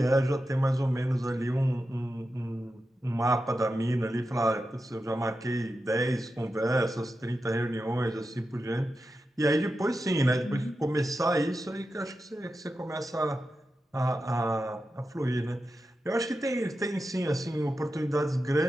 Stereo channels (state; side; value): normal; both; correlation 0.90